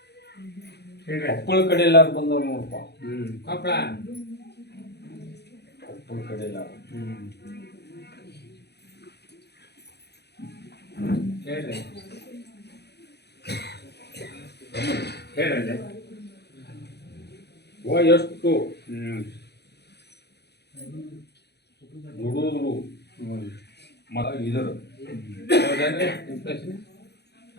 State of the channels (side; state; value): right; late; 0.48 ms